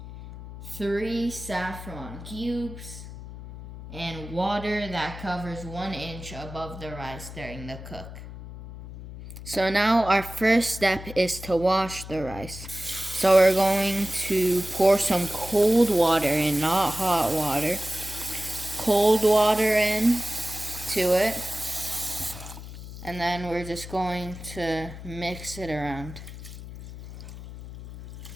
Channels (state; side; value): noise; left; hum, 13 dB below the sound